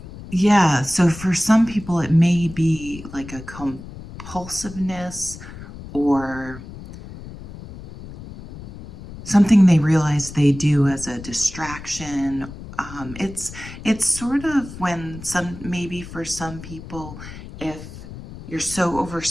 so for some people it may be like a compulsiveness or something they realize they do as a distraction. It's sort of when maybe for some people, if you're so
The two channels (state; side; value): noise; left; rumble, 14 dB below the sound